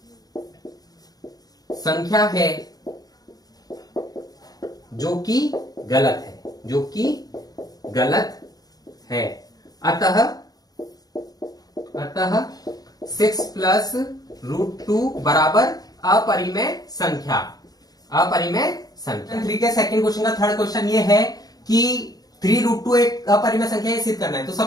संख्या है, जो कि गलत है। अतः 6 + √2 बराबर अपरिमेय संख्या। 3 के सेकंड क्वेश्चन का थर्ड क्वेश्चन ये है कि 3√2 एक अपरिमेय संख्या है, सिद्ध करना है। तो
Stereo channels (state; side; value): late; right; 0.18 ms